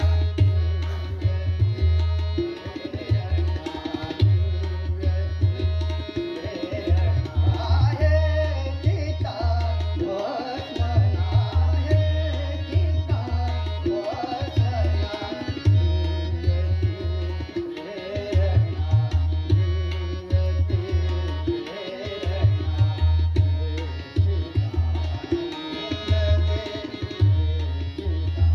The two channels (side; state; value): both; identical; correlation 1.00